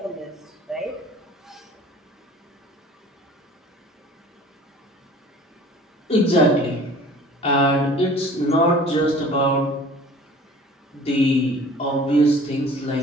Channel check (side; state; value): both; normal; correlation 0.47